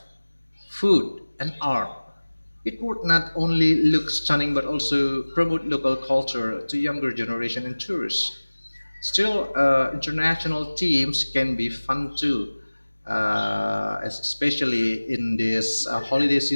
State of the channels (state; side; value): inverted; both; correlation -1.00